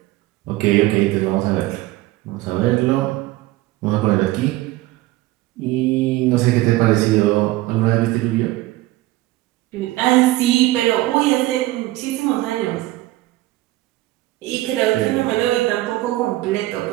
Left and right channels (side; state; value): left; quieter; 17.8 dB